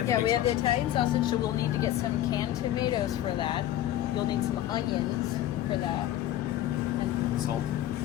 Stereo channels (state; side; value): quieter; right; 13.1 dB